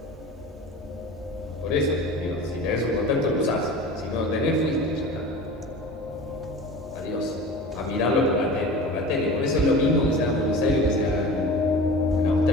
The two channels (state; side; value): normal; both; correlation 0.36